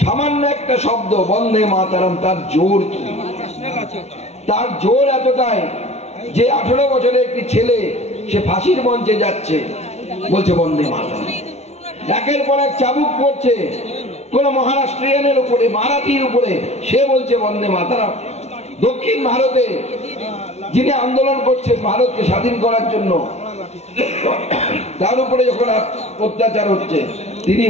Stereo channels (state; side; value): late; right; 0.31 ms